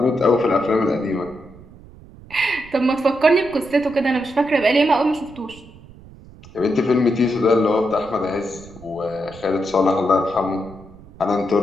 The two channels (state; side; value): noise; right; rumble, 21 dB below the sound